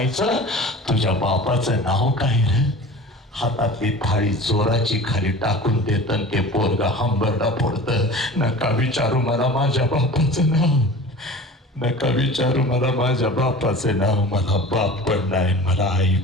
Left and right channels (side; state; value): both; normal; correlation 0.39